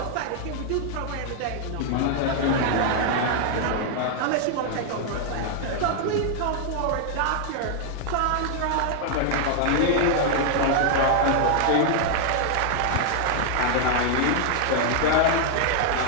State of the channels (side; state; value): both; different; correlation 0.00